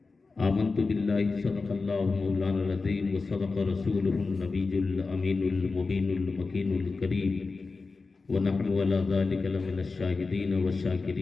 آمنت بالله صدق الله مولانا العظيم وصدق رسوله النبي الأمين المبين المكين الكريم ونحن على ذلك لمن الشاهدين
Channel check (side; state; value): right; quieter; 4.1 dB